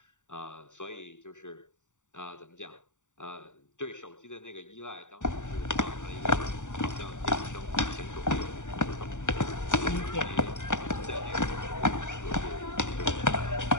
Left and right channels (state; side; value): late; right; 0.86 ms